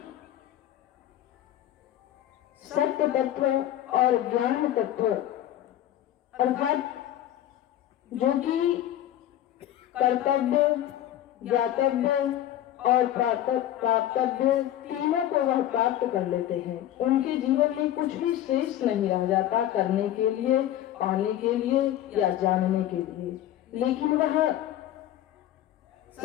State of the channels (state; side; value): quieter; right; 12.4 dB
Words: सत्य तत्व और ज्ञान तत्व अर्थात जो कि कर्तव्य, ज्ञातव्य और प्राप्तव्य तीनों को वह प्राप्त कर लेते हैं। उनके जीवन में कुछ भी शेष नहीं रह जाता करने के लिए, पाने के लिए या जानने के लिए। लेकिन वह